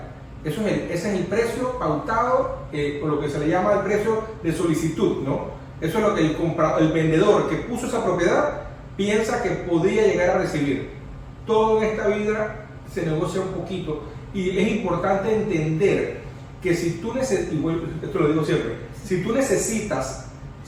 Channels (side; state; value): both; identical; correlation 1.00